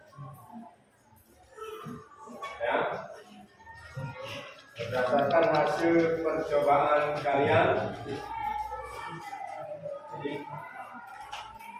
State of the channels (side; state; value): both; identical; correlation 1.00